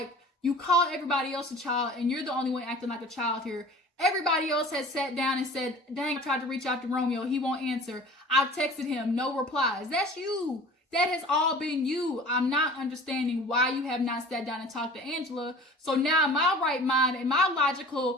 you called everybody else a child, and you're the only one acting like a child here. Everybody else has sat down and said, dang, I tried to reach out to Romeo. He won't answer. I've texted him. No replies. That's you. That has all been you. I'm not understanding why you have not sat down and talked to Angela. So now in my right mind, in my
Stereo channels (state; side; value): normal; both; correlation 0.43